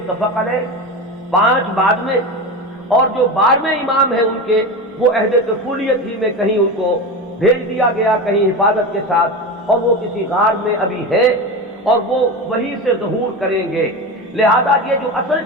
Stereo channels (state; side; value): normal; both; correlation 0.23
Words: علیہ، 5 بعد میں، اور جو 12ویں امام ہیں ان کے وہ عہد طفولیت ہی میں کہیں ان کو بھیج دیا گیا، کہیں حفاظت کے ساتھ، اور وہ کسی غار میں ابھی ہے اور وہ وہیں سے ظہور کریں گے۔ لہذا یہ جو اصل